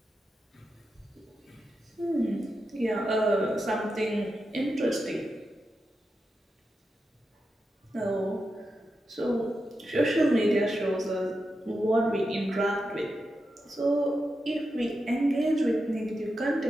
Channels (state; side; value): normal; both; correlation 0.88